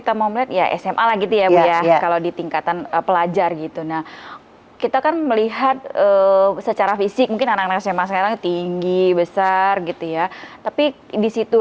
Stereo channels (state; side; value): identical; both; correlation 1.00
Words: mau melihat ya SMA lah gitu ya Bu ya, kalau di tingkatan pelajar gitu. Nah kita kan melihat secara fisik mungkin anak-anak SMA sekarang tinggi, besar gitu ya. Tapi